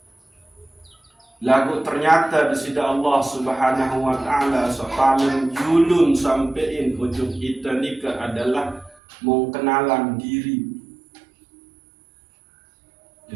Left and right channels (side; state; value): left; drops out; at 9.0 s